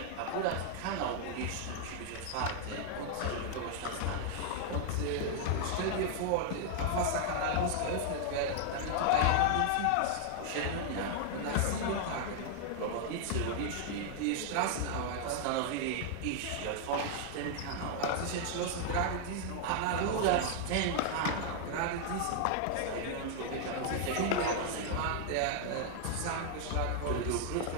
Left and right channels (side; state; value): both; different; correlation 0.00